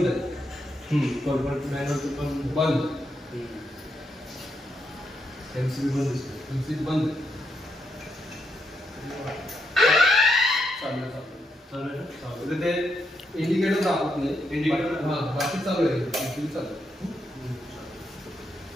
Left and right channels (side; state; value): both; normal; correlation 0.80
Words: आहे. कॉल पॉईंट पण बंद, एमसीबी बंद, एमसीबी बंद. चालेल ते इंडिकेटर दाखवत नाही. इंडिकेटर हां बाकी चालू आहे, चालू.